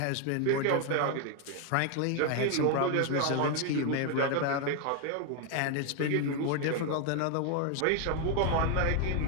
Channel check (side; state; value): both; different; correlation 0.01